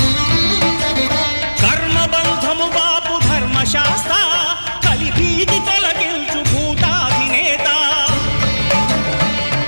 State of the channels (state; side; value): inverted; both; correlation -1.00